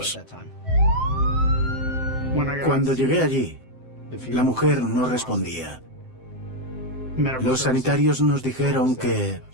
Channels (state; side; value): late; left; 7.7 ms